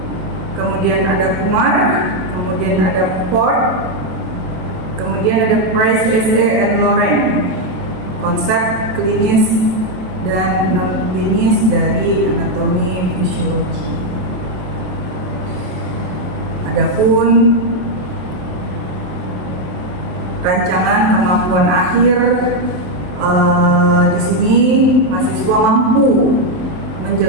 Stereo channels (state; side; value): late; left; 27 ms